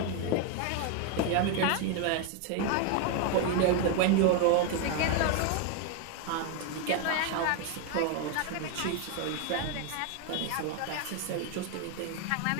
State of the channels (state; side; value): different; both; correlation 0.01